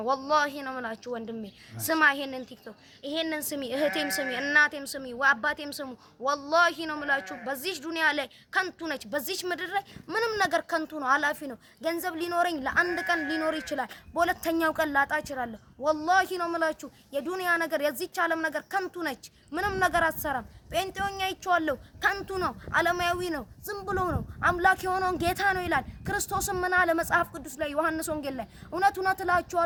ወላሂ ነው የምላችሁ ወንድሜ ስማ፣ ይሄንን ቲክቶክ ይሄንን ስሚ፣ እህቴም ስሚ፣ እናቴም ስሚ፣ አባቴም ስሙ። ወላሂ ነው የምላችሁ በዚህ ዱንያ ላይ ከንቱ ነች። በዚህ ምድር ላይ ምንም ነገር ከንቱ ነው፣ አላፊ ነው። ገንዘብ ሊኖረኝ ለአንድ ቀን ሊኖር ይችላል፣ በሁለተኛው ቀን ላጣ እችላለሁ። ወላሂ ነው የምላችሁ የዱንያ ነገር የዚች ዓለም ነገር ከንቱ ነች። ምንም ነገር አትሰራም። ጴንጤውኛ ይቻለው ከንቱ ነው፣ ዓለማዊ ነው፣ ዝም ብሎ ነው። አምላክ የሆነውን ጌታ ነው ይላል። ክርስቶስም ምን አለ መጽሐፍ ቅዱስ ላይ ዮሐንስ ወንጌል ላይ እውነት እውነት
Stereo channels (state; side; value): identical; both; correlation 1.00